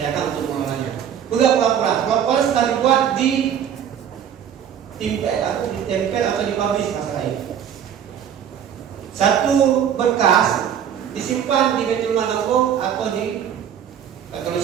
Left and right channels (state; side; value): quieter; left; 9.0 dB